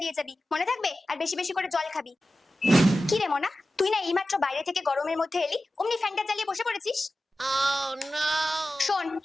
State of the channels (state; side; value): normal; both; correlation 0.94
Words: দিয়ে যাবি, মনে থাকবে? আর বেশি বেশি করে জল খাবি। কি রে মনা, তুই না এইমাত্র বাইরে থেকে গরমের মধ্যে এলি, অমনি ফ্যানটা চালিয়ে বসে পড়েছিস? শোন,